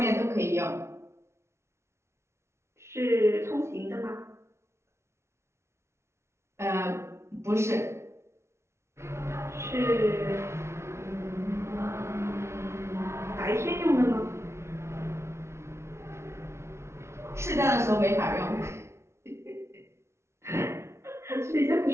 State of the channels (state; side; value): late; left; 0.13 ms